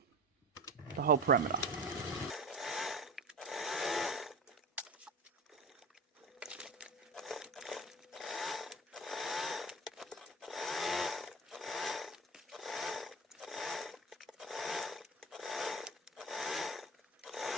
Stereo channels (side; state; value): both; normal; correlation 0.32